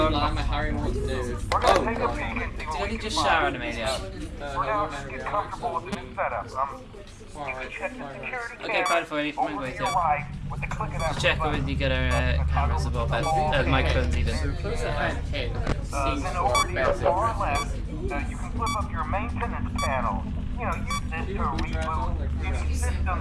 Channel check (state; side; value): identical; both; correlation 1.00